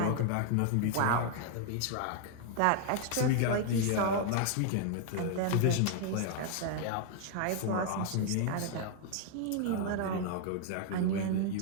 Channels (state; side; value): different; both; correlation 0.00